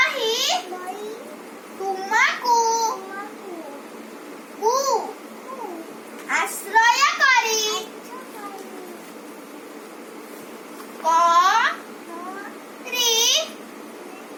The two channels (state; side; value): identical; both; correlation 1.00